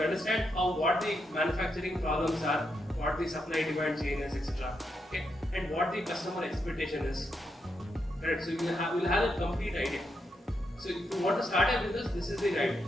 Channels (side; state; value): both; normal; correlation 0.82